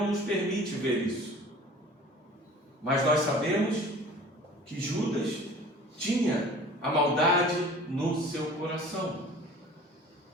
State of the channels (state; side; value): normal; both; correlation 0.45